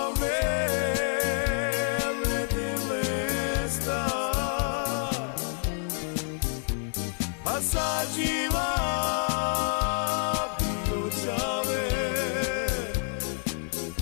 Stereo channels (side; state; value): right; silent; digital silence